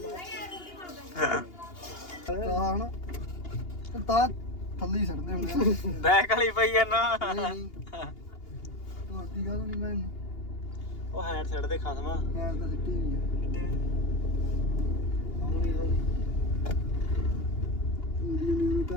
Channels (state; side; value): late; right; 2.8 ms